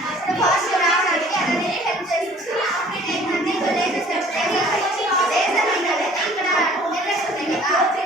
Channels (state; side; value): normal; both; correlation 0.52